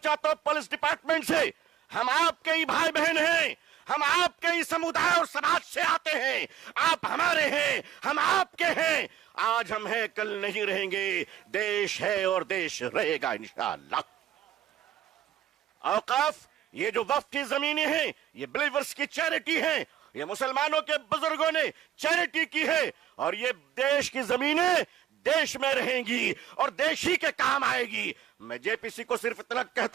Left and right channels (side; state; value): left; quieter; 10.9 dB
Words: हूं, पुलिस डिपार्टमेंट से, हम आपके ही भाई बहन हैं, हम आपके ही समुदाय और समाज से आते हैं। आप हमारे हैं, हम आपके हैं। आज हम हैं, कल नहीं रहेंगे। देश है और देश रहेगा इंशाअल्लाह। औकाफ, ये जो वक्फ की जमीनें हैं, ये बिलीवर्स की चैरिटी है। ये मुसलमानों के बुजुर्गों ने चैरिटी की है और ये देश की जमीनें देश में रहेंगी और देश ही के काम आएगी। मैं जेपीसी को सिर्फ इतना